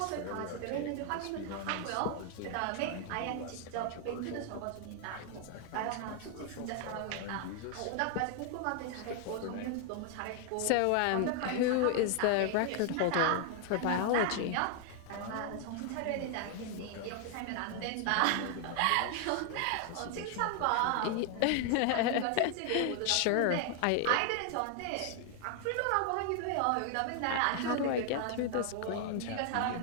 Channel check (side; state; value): both; different; correlation 0.00